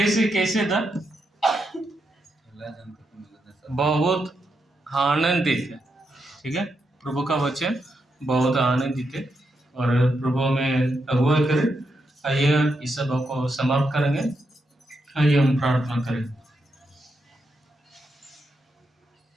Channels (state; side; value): normal; both; correlation 0.83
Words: कैसे था? बहुत आनंदित है, ठीक है। प्रभु का वचन बहुत आनंदित है और प्रभु में अगुवाई करें। आइए इस सभा को समाप्त करेंगे। आइए हम प्रार्थना करें।